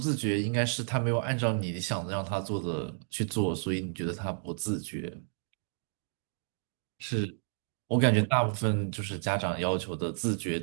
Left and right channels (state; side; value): silent; left; digital silence